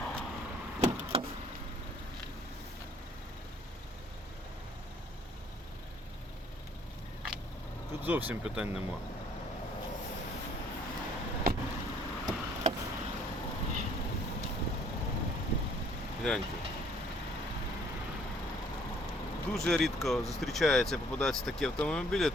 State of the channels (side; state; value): both; normal; correlation 0.60